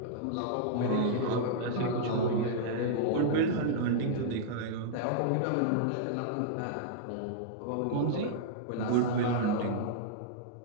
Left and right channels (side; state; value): both; different; correlation -0.02